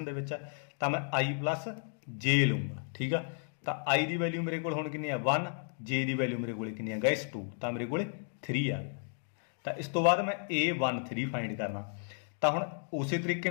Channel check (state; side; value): silent; right; 56 dB below the other